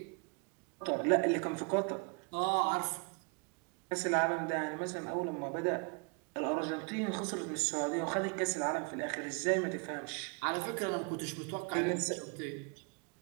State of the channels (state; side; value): quieter; left; 34.1 dB